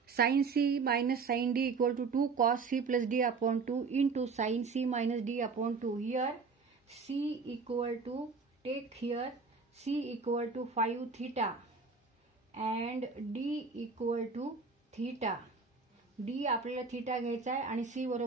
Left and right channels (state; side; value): quieter; left; 4.7 dB